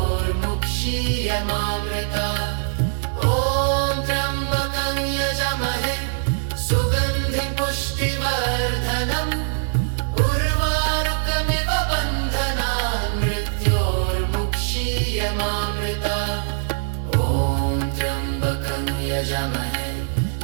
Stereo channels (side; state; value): left; silent; digital silence